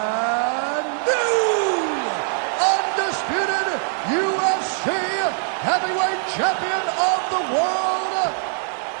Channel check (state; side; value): silent; left; 64 dB below the other